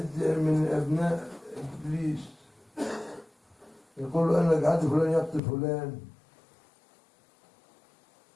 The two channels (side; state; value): right; drops out; at 5.4 s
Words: من أبناء إبليس يقول أنا جعلت فلان يقتل فلان،